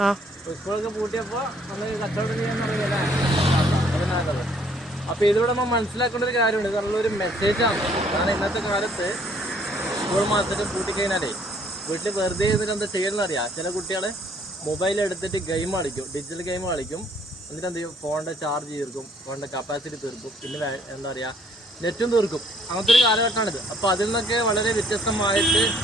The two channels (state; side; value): normal; both; correlation 0.63